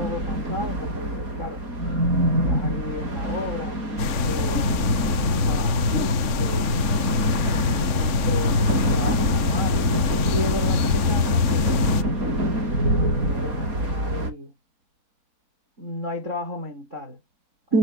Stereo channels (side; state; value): left; late; 3.6 ms